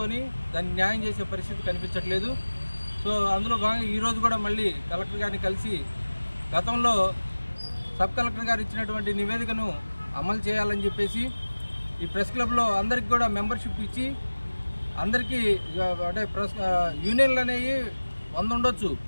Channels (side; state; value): both; inverted; correlation -1.00